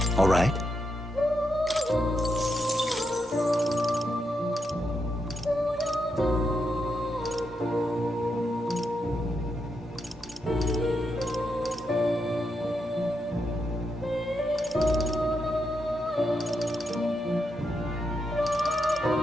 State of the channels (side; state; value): both; normal; correlation 0.83